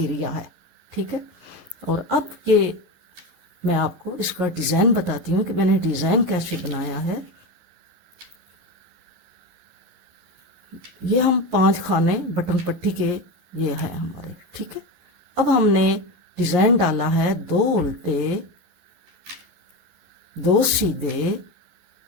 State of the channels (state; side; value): late; left; 11 ms